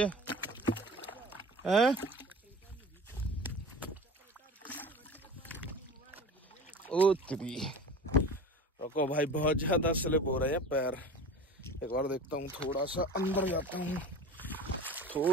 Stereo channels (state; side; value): normal; both; correlation 0.37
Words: है। ओ तेरी रुको भाई, बहुत ज्यादा स्लिप हो रहे हैं पैर। एक बार देखता हूँ, थोड़ा सा अंदर जाता हूँ,